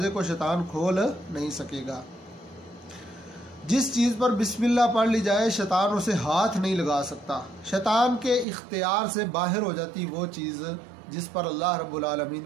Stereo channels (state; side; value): drops out; left; at 8.5 s